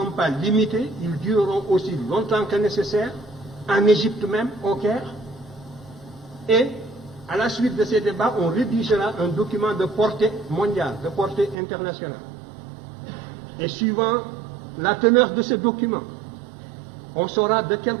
pas limités, ils dureront aussi longtemps que nécessaire, en Égypte même, au Caire. Et à la suite de ces débats, on rédigera un document de portée mondiale, de portée internationale. Et suivant la teneur de ce document, on saura de quel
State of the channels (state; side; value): drops out; left; at 11.6 s